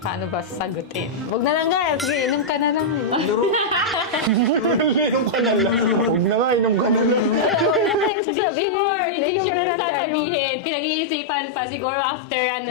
ba sasagutin? Huwag na lang guys. Sige, inom ka na lang. Inom ka na lang. Huwag na nga, inom ka na lang. Before, hindi sure na sasabihin. Pinag-iisipan pa siguro after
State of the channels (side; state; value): right; drops out; at 8.1 s